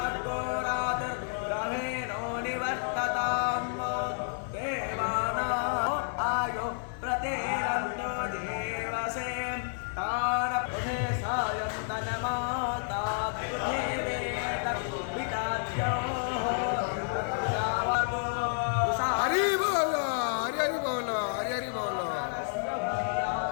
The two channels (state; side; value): silent; right; digital silence